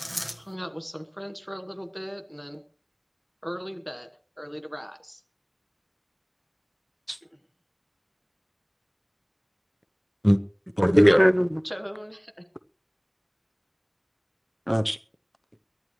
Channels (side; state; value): both; identical; correlation 1.00